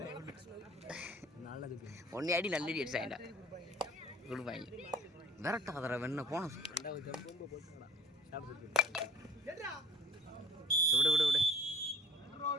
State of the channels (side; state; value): both; normal; correlation 0.48